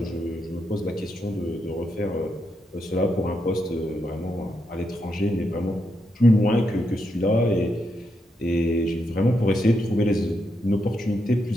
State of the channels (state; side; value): normal; both; correlation 0.82